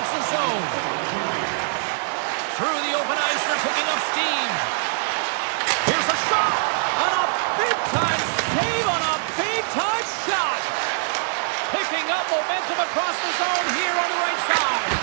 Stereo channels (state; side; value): silent; left; digital silence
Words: zone. Through the open ice, they're picking up steam. Here's a shot. On a big-time save on a big-time shot. Picking up momentum across the zone here on the right side.